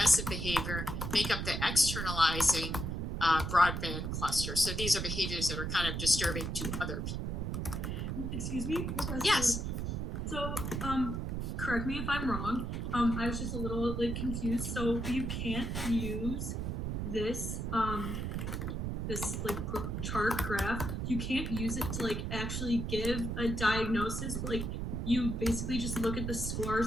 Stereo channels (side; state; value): right; noise; rumble, 2 dB below the sound